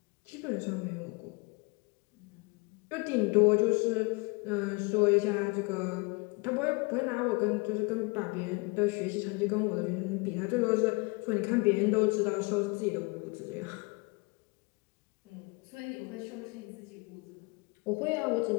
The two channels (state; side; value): quieter; right; 28.6 dB